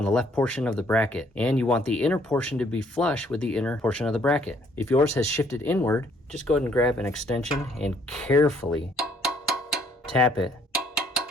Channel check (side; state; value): both; normal; correlation 0.64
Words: the left portion of the bracket, and you want the inner portion to be flush with the inner portion of the bracket. If yours has shifted inward, just go ahead and grab an extension and carefully tap it